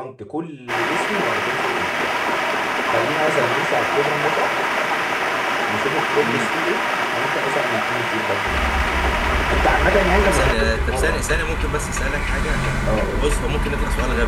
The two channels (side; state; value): both; identical; correlation 1.00